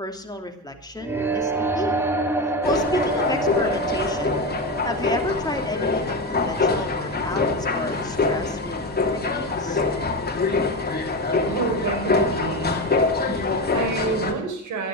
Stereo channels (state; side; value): normal; both; correlation 0.17